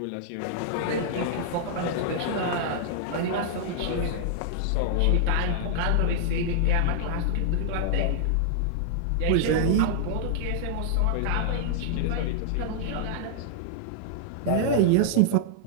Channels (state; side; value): different; both; correlation -0.01